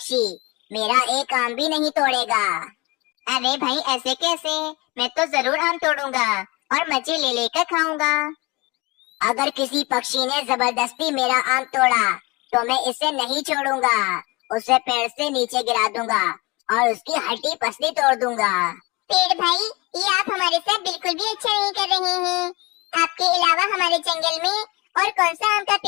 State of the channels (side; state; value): right; quieter; 24.8 dB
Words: मेरा एक आम भी नहीं तोड़ेगा। अरे भाई ऐसे कैसे? मैं तो जरूर आम तोड़ूंगा और मजे ले लेकर खाऊंगा। अगर किसी पक्षी ने जबरदस्ती मेरा आम तोड़ा तो मैं इसे नहीं छोड़ूंगा, उसे पेड़ से नीचे गिरा दूंगा और उसकी हड्डी पसली तोड़ दूंगा। पेड़ भाई, ये आप हमारे साथ बिल्कुल भी अच्छा नहीं कर रहे हैं। आपके अलावा हमारे जंगल में और कौन सा आम का